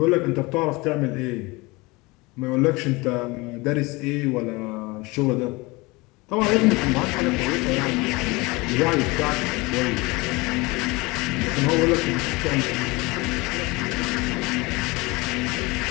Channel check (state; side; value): quieter; right; 23.9 dB